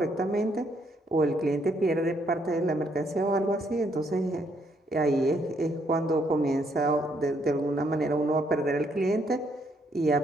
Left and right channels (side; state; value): both; normal; correlation 0.71